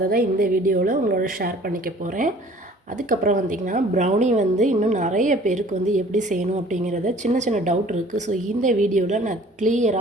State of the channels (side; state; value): both; normal; correlation 0.51